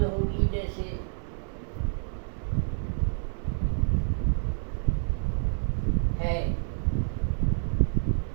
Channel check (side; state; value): left; silent; 56 dB below the other